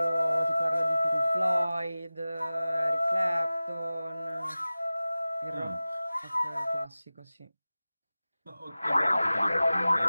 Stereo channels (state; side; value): inverted; both; correlation -0.97